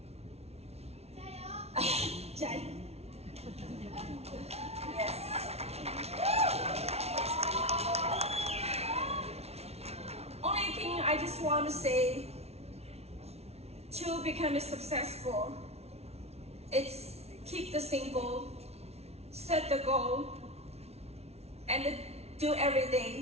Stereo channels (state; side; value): late; left; 0.31 ms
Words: Jai. Yes. Only thing I just want to say to become successful, it's keep the simple, set the goal, and do every